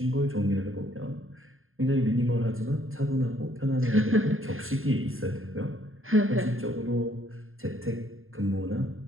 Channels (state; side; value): late; left; 0.60 ms